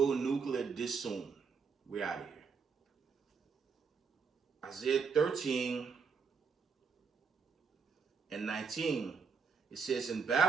nuclear this soon, we're out of here. Isaiah 13 and 19, it says, in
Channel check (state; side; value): quieter; left; 5.6 dB